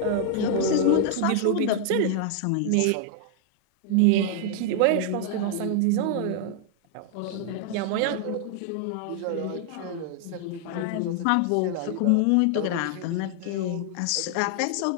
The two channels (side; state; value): both; different; correlation 0.00